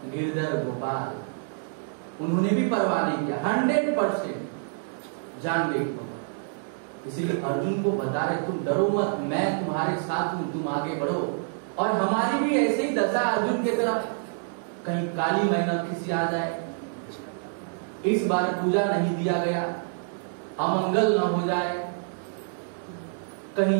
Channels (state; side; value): silent; left; digital silence